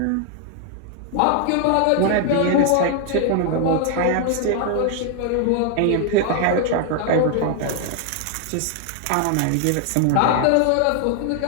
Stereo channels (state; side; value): different; both; correlation 0.00